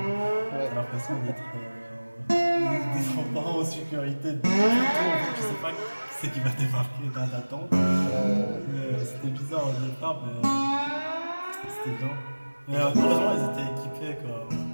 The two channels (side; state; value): both; inverted; correlation -1.00